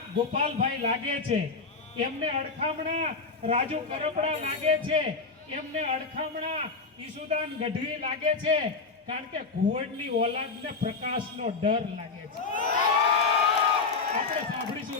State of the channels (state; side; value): quieter; right; 4.4 dB